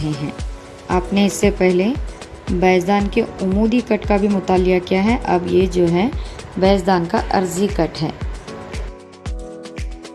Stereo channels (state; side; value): identical; both; correlation 1.00